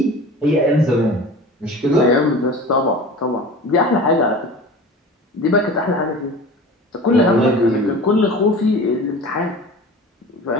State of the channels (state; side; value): normal; both; correlation 0.37